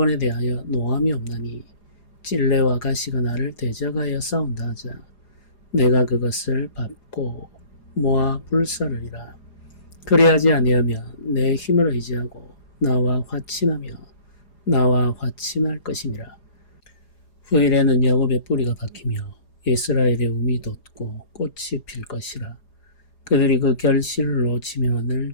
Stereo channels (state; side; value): late; right; 4.9 ms